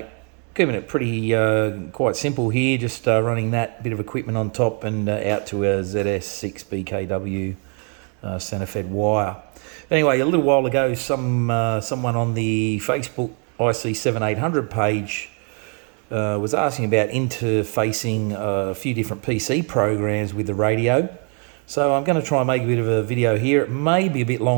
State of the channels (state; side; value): quieter; left; 39.2 dB